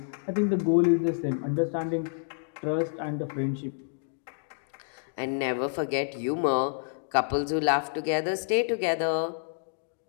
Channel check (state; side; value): silent; right; digital silence